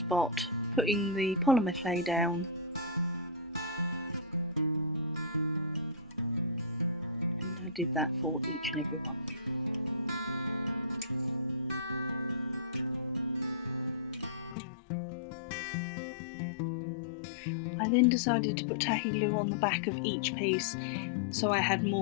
putting the polymer clay down, and I did that for each and every one. I then decided to put tahi glue on the back of each piece so I had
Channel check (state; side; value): drops out; right; at 14.6 s